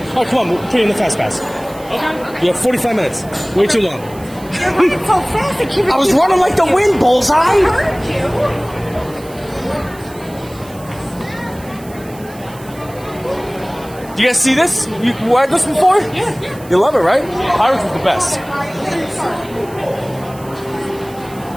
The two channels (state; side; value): noise; right; hiss, 21 dB below the sound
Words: Oh, come on, we'll put you in the Fast Pass. Okay. You have 45 minutes. Way too long. You're running so fast. I was running like the wind, Bullseye. Heard you. Do you guys see this? You ride this before? Yeah. You love it, right? Pirates is the best.